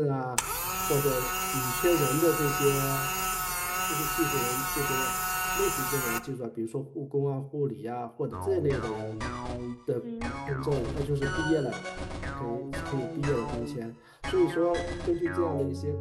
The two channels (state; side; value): identical; both; correlation 1.00